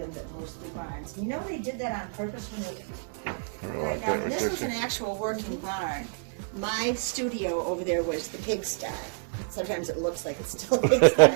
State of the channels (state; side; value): silent; left; 59 dB below the other